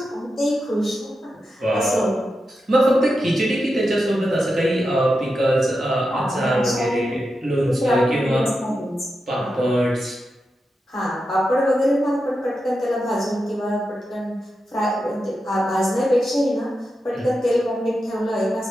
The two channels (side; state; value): both; normal; correlation 0.89